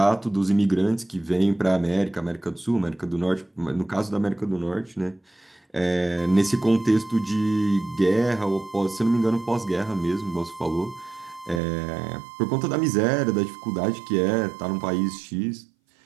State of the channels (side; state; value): left; drops out; at 11.6 s